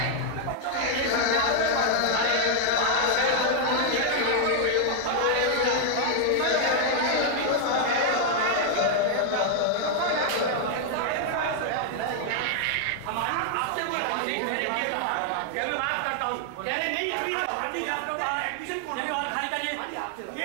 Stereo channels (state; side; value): different; both; correlation 0.00